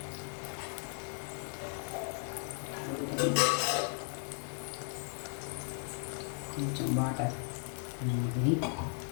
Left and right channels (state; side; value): silent; right; 54 dB below the other